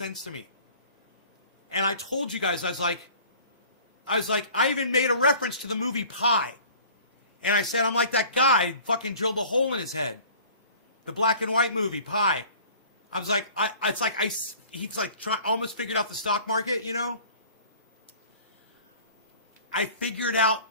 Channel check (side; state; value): both; inverted; correlation -0.47